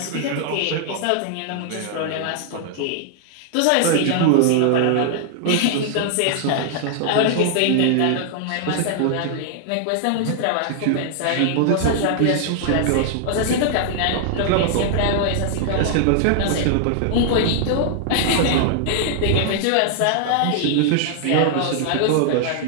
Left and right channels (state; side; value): different; both; correlation -0.01